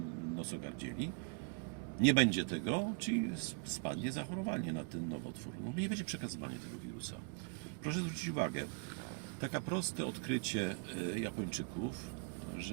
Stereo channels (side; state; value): left; quieter; 36.6 dB